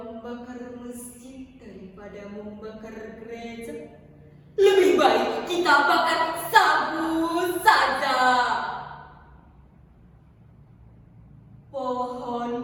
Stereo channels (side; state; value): both; identical; correlation 1.00